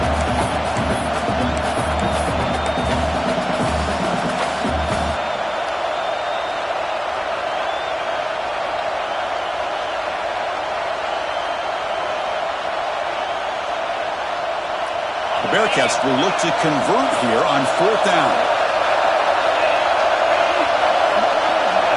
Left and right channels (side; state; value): both; identical; correlation 1.00